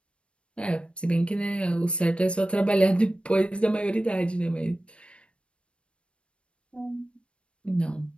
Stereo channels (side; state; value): right; late; 0.058 ms